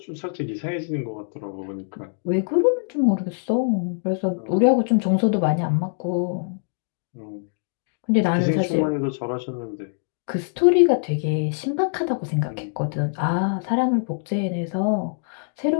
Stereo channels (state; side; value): silent; right; digital silence